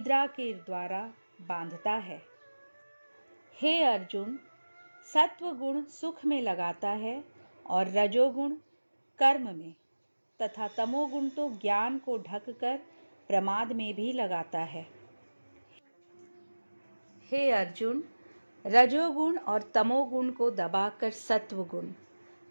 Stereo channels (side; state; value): both; inverted; correlation -1.00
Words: के द्वारा बांधता है। हे अर्जुन, सत्वगुण सुख में लगाता है और रजोगुण कर्म में, तथा तमोगुण तो ज्ञान को ढककर प्रमाद में भी लगाता है। हे अर्जुन, रजोगुण और तमोगुण को दबाकर सत्वगुण,